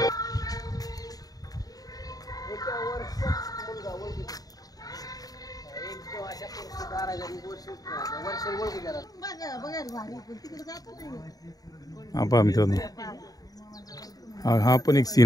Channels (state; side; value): late; right; 0.18 ms